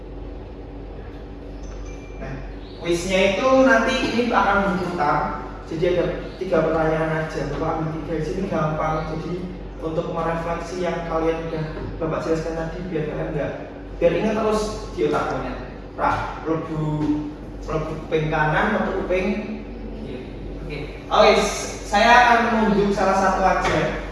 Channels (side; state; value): both; identical; correlation 1.00